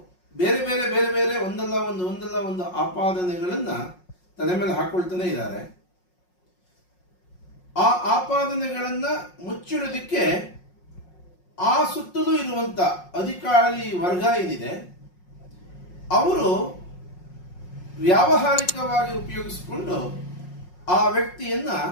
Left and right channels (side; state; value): right; late; 5.5 ms